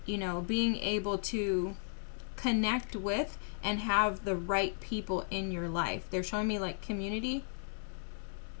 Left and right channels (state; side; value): silent; right; digital silence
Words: you know, being able to connect with and have the right people in your life. They're showing me like community,